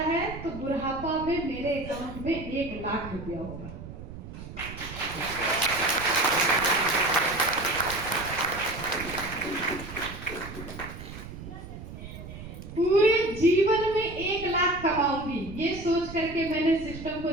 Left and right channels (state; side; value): noise; right; rumble, 12 dB below the sound